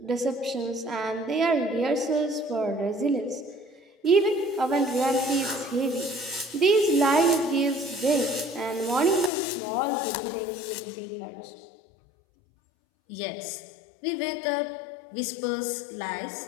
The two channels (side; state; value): right; drops out; at 9.3 s